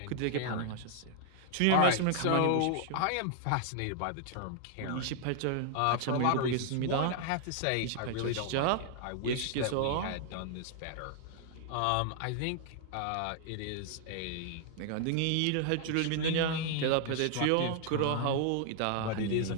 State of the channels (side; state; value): both; different; correlation 0.00